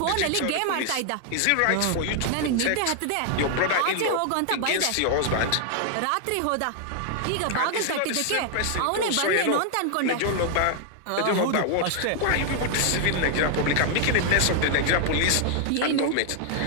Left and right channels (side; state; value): both; different; correlation 0.00